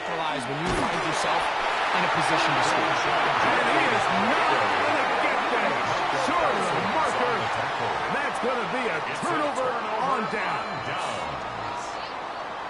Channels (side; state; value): both; identical; correlation 1.00